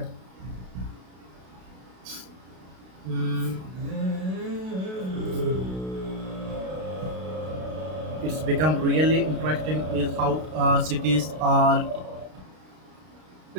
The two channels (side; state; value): left; late; 32 ms